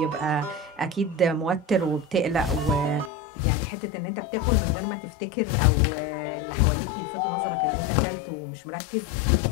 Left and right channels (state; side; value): drops out; right; at 3.1 s